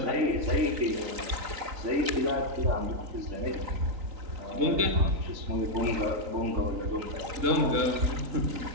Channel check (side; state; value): left; late; 3.9 ms